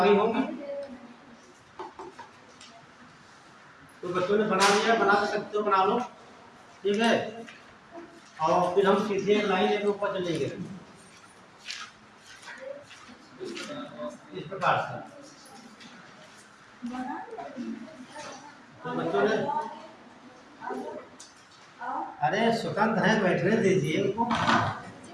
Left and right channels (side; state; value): both; identical; correlation 1.00